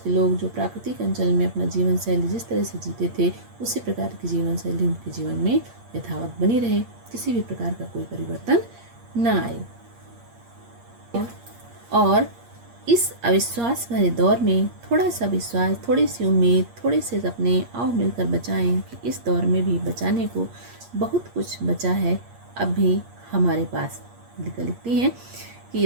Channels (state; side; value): late; left; 8.5 ms